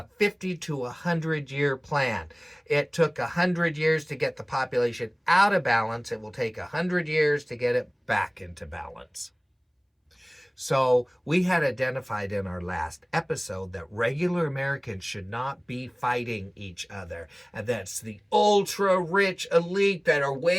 50 to 100 year plan. It took 100 years to get the population out of balance. It will take 100 years to get it back into balance. So we had identified in our last episode that regular Americans should not be fighting each other. And that's the ultra-rich elite that are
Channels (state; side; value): identical; both; correlation 1.00